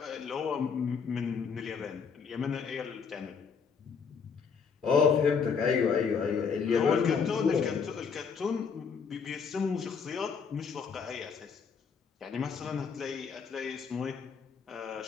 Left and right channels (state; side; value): quieter; right; 6.0 dB